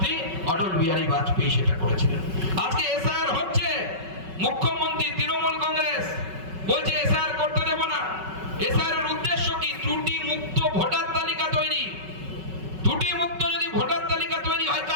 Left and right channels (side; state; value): left; late; 5.3 ms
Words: অটল বিহারী বাজপেয়ী সেটা করেছিলেন। আজকে এসআইআর হচ্ছে, মুখ্যমন্ত্রী তৃণমূল কংগ্রেস বলছে এসআইআর করতে দেব না। এসআইআর এর উদ্দেশ্য কি? ত্রুটি মুক্ত ভোটার তালিকা তৈরি। ত্রুটি মুক্ত যদি ভোটার তালিকা তৈরি হয়,